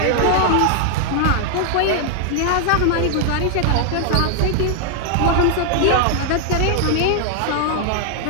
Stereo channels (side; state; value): both; different; correlation 0.00